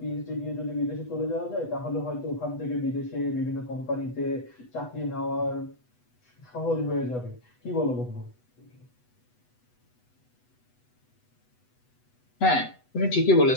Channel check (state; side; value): late; right; 8.1 ms